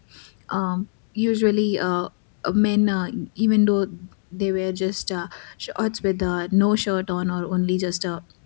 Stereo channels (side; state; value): right; silent; digital silence